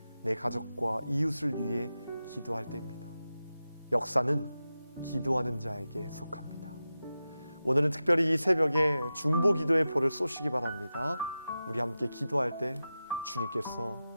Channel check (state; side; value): inverted; both; correlation -0.92